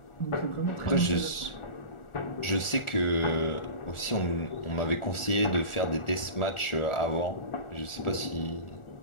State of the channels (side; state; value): right; late; 1.4 ms